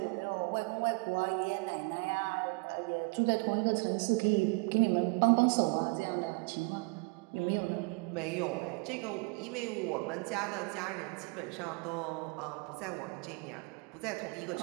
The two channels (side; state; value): left; quieter; 30.6 dB